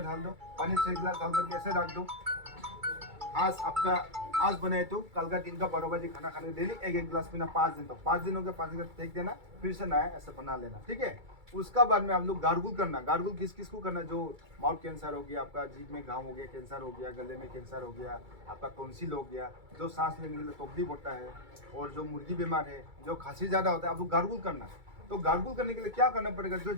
डाल दो, पानी 6 गिलास डाल करके ऐसे रख दो। आज आपका आज बनाए तो कल का दिन का 12 बजे खाना खाने डेली एक गिलास पीना 5 दिन तक। 5 दिन हो गया, 5 गिलास फेंक देना, फिर से नया ऐसा बना लेना। ठीक है, उसका बाद में आप लोग गार्गुल करना। गार्गुल किस किस को करना, जो माउथ कैंसर हो गया, आपका जीभ में घाव हो गया, कैंसर हो गया, गले में कैंसर हो गया, आपका टॉन्सिल हो गया, जो सांस लेने के लिए तकलीफ होता है, और जो मुर्गी बीमार है, जो खांसी ज्यादा होता है, आप लोग गार्गुल करना। तो गार्गुल करने के लिए क्या करना पड़ेगा, जो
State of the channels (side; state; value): left; late; 2.3 ms